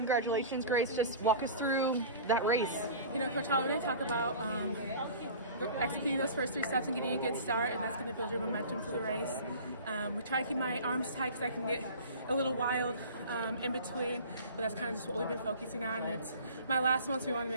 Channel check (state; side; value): inverted; both; correlation -0.39